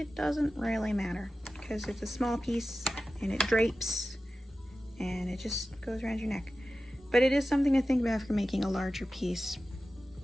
doesn't really matter because it's a small piece and it drapes and it just goes around your neck. But it is something to think about for making a larger piece.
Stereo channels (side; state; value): both; normal; correlation 0.94